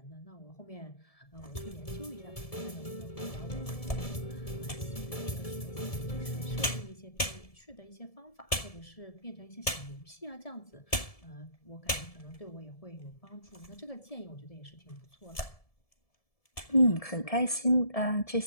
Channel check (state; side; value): late; right; 1.7 ms